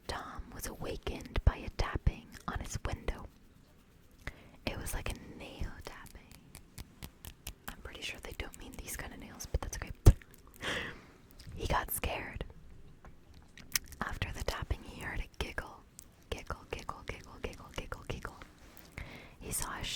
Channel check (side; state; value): both; identical; correlation 1.00